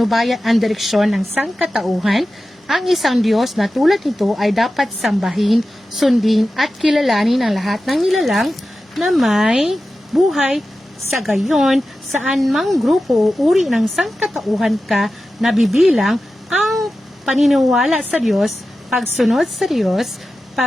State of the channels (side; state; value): both; normal; correlation 0.93